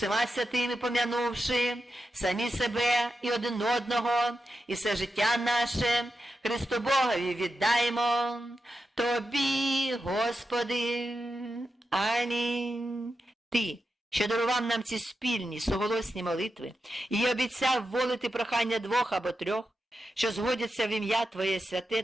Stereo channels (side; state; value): both; normal; correlation 0.89